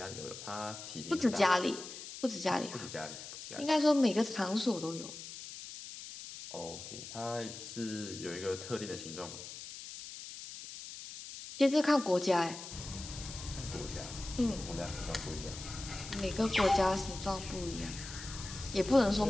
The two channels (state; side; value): noise; left; hiss, 11 dB below the sound